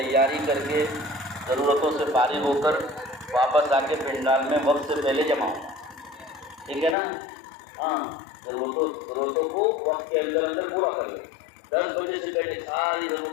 کر کے ضرورتوں سے فارغ ہو کر واپس آ کے پنڈال میں وقت سے پہلے جمع ہو. ٹھیک ہے نا؟ ہاں, ضرورتوں کو وقت کے اندر پورا کر لیں. 10 بجے سے پہلے ساری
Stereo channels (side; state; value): right; drops out; at 7.0 s